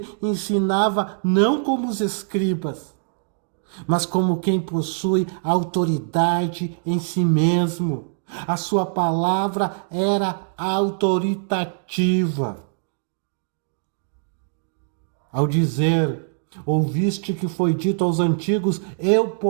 ensinava não como os escribas, mas como quem possui autoridade em si mesmo. A sua palavra era autoritativa. Ao dizer, ouviste que foi dito aos antigos, eu,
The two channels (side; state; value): left; silent; digital silence